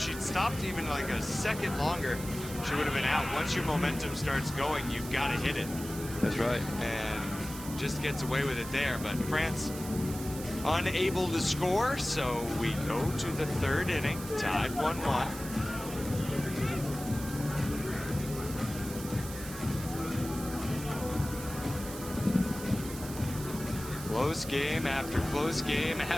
stopped even like a second longer, she would have been out. Once your momentum starts going, you've got to hit it. That's right. And just gets away with it there. But France unable to score, so we go to the third inning, tied 1-1. Close game after close game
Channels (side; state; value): right; noise; hiss, 12 dB below the sound